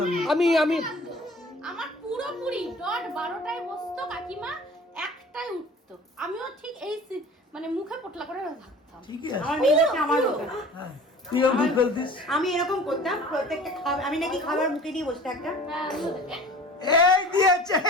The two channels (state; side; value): normal; both; correlation 0.44